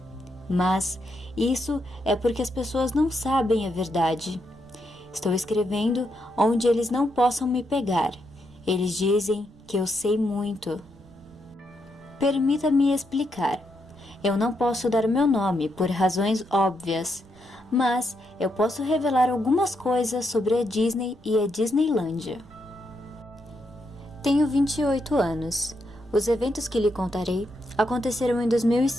Mas isso é porque as pessoas não sabem a verdade. Estou escrevendo onde eles não possam me pegar. Eles dizem que eu sei muito. Permita-me explicar. Eu não posso dar meu nome por razões óbvias, mas eu posso revelar algumas coisas sobre a Disney e a Disneylândia. Tenho 28 anos. Os eventos que lhe contarei aconteceram em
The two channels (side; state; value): right; noise; rumble, 26 dB below the sound